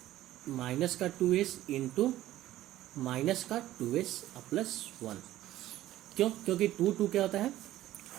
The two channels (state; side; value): quieter; left; 14.5 dB